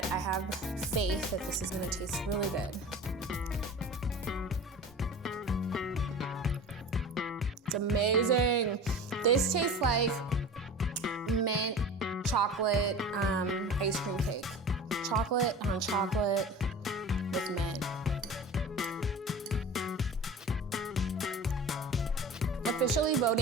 I have faith that this is gonna taste really good. It's amazing. This tastes like mint chocolate ice cream cake. Chocolate on chocolate with mint. Officially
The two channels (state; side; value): normal; both; correlation 0.36